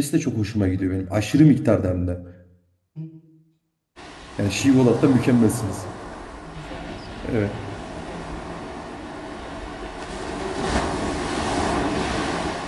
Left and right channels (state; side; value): identical; both; correlation 1.00